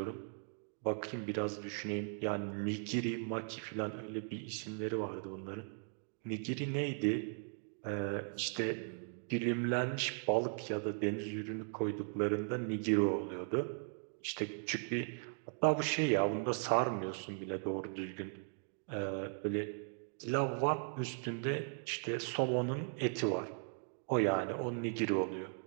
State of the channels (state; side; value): silent; left; 52 dB below the other